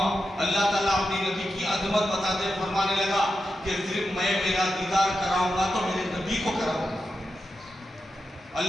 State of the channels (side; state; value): both; normal; correlation 0.88